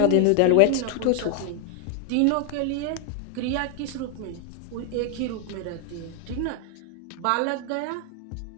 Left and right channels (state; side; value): different; both; correlation 0.00